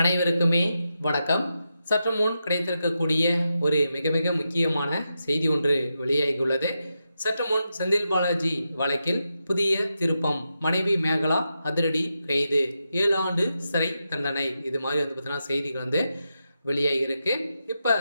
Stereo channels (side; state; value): both; inverted; correlation -0.87